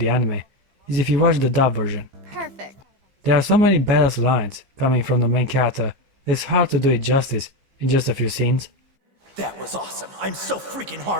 anime is if you watch the dub version. Perfect. There are so many badass lines coming from the main character that it's hard to do it justice in just a few scenes. That was awesome. I'm so freaking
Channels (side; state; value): left; late; 15 ms